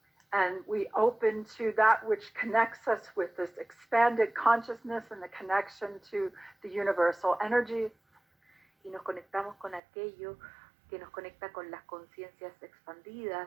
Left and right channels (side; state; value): left; drops out; at 9.8 s